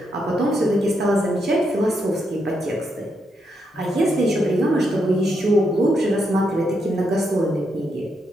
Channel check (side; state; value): both; normal; correlation 0.80